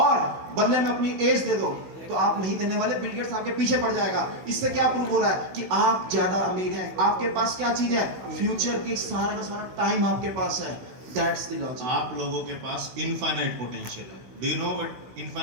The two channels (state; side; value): late; left; 16 ms